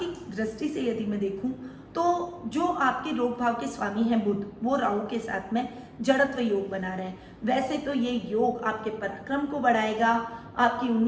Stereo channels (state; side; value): identical; both; correlation 1.00